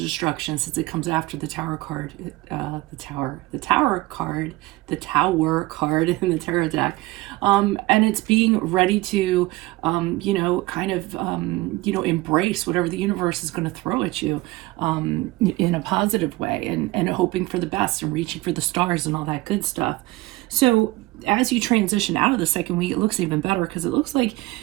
since it comes after the Tower card, the Tower card in the Tarot deck, and it's being ready to, embrace whatever the universe is going to throw at you, in a positive way, and hoping for the best and reaching for the stars and all that good stuff. So as you transition out of the second week, it looks even better, because it looks like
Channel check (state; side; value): quieter; left; 19.7 dB